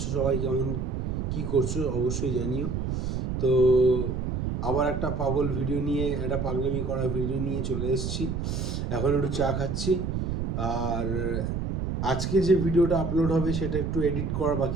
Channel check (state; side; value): noise; right; rumble, 2 dB below the sound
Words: সবাই কেমন কি করছো অবশ্যই জানিও। তো আবার একটা পাগলামি করা ভিডিও নিয়ে চলে এসেছি। এখন একটু চা খাচ্ছি। আর আজকে যে ভিডিওটা আপলোড হবে সেটা একটু এডিট করা